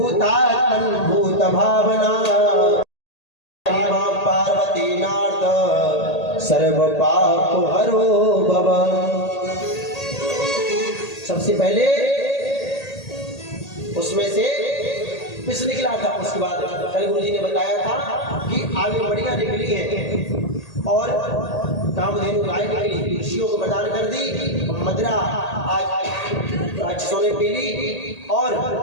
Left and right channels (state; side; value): late; right; 1.8 ms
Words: भूत भावना पार्वती नाथ सर्व पाप हरो भव। सबसे पहले उसमें से पिस निकला था। उसके बाद कल गुरु जी ने बताया था कि आगे बढ़िया निकली है और कामधेनु गाय निकली, ऋषियों को प्रदान कर दी। मदिरा आज राक्षसों ने पी ली और